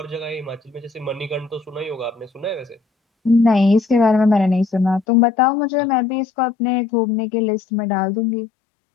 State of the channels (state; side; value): drops out; right; at 5.1 s